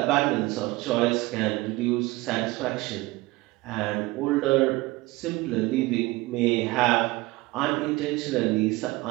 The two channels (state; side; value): quieter; left; 20.8 dB